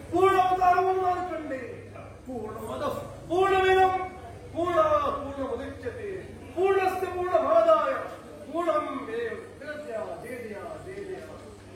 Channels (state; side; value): identical; both; correlation 1.00